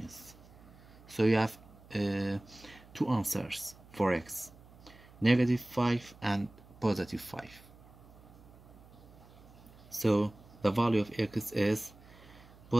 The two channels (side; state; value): right; noise; hum, 22 dB below the sound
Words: So you have two answers for x, -5 and +5. So the value of x is